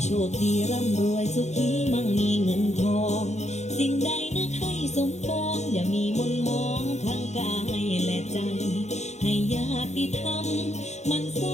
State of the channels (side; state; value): right; late; 0.33 ms